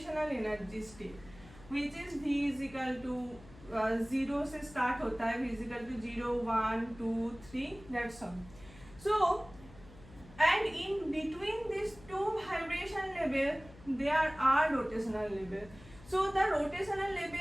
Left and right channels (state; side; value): noise; left; hum, 20 dB below the sound